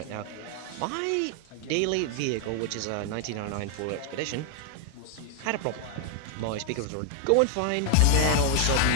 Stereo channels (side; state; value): both; different; correlation 0.00